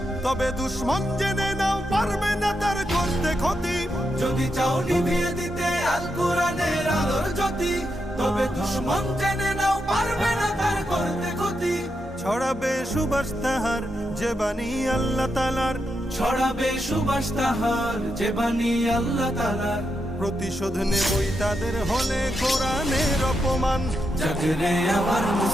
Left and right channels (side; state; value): both; normal; correlation 0.84